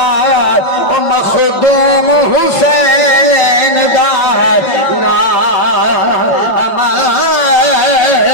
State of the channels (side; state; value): right; late; 5.3 ms